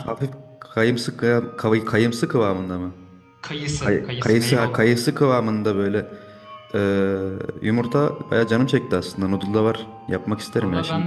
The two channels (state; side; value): identical; both; correlation 1.00